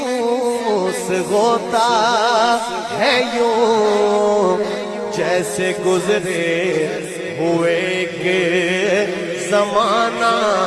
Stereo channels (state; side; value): identical; both; correlation 1.00